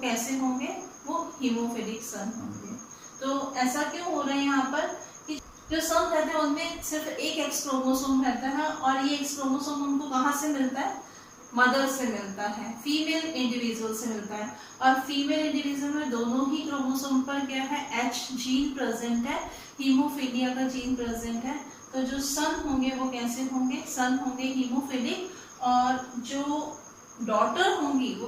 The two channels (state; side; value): identical; both; correlation 1.00